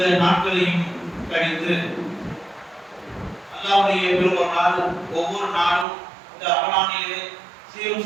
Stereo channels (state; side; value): drops out; left; at 5.9 s